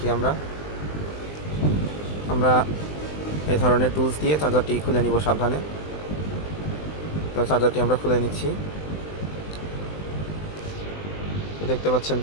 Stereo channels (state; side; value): late; right; 20 ms